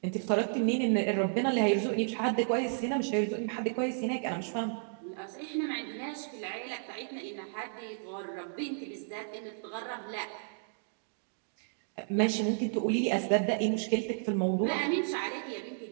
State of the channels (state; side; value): silent; left; digital silence